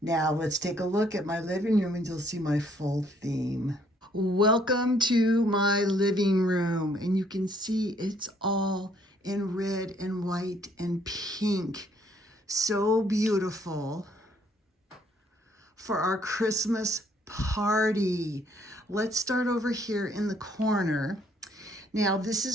Now let's take a look at my living room and you'll see my full theme. Welcome to my living room, and you can see it's all in red and white and pink. So beautiful for our Christmas party. Let's start over here in the corner. Now, this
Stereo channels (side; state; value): both; normal; correlation 0.65